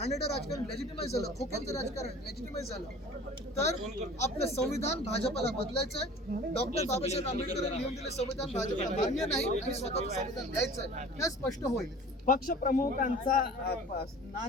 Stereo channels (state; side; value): normal; both; correlation 0.44